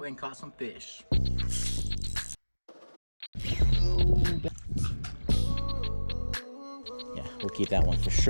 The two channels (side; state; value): both; inverted; correlation -1.00